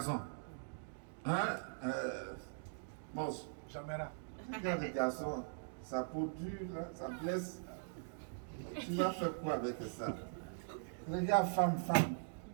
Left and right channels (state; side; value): silent; left; digital silence